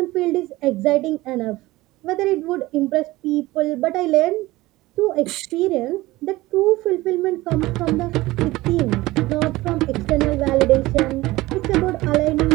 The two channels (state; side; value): quieter; left; 18.9 dB